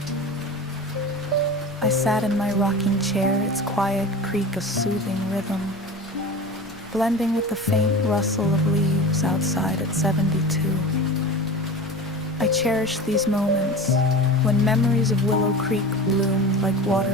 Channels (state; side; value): normal; both; correlation 0.33